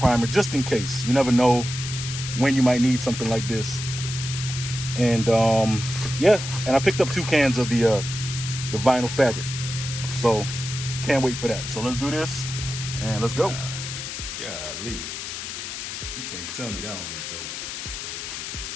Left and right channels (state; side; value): noise; left; hiss, 7 dB below the sound